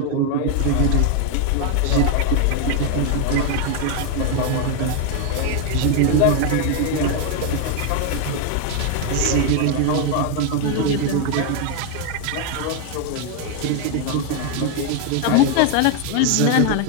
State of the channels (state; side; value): different; both; correlation 0.01